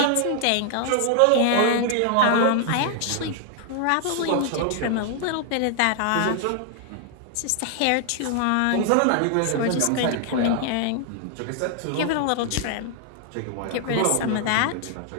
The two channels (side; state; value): both; different; correlation 0.00